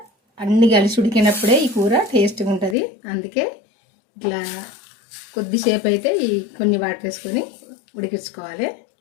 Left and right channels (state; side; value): drops out; right; at 2.8 s